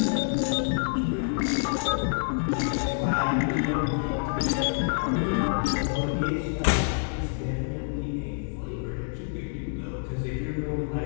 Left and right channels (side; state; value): right; silent; digital silence